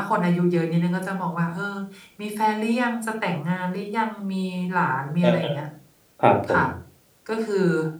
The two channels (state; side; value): identical; both; correlation 1.00